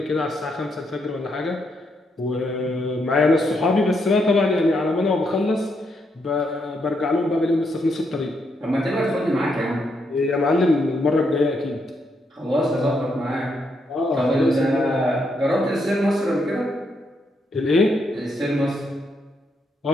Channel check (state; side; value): normal; both; correlation 0.78